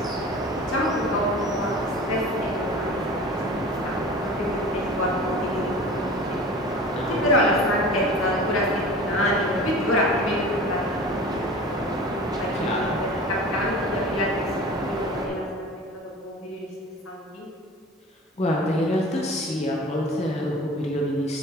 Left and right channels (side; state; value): both; normal; correlation 0.39